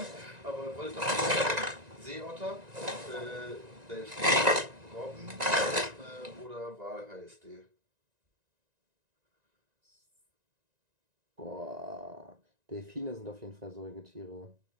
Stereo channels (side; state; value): left; late; 1.9 ms